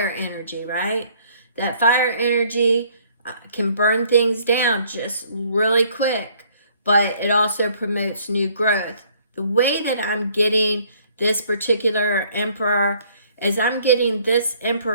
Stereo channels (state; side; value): inverted; both; correlation -0.61